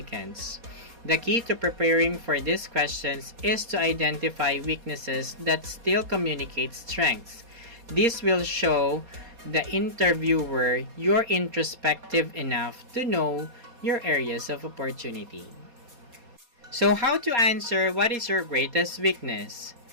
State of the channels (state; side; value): late; left; 4.2 ms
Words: The key to preparing for these questions is to identify weaknesses that still communicate strengths. This will show the interviewer you're introspective enough to know your areas of opportunity. So how to answer what is your greatest weakness?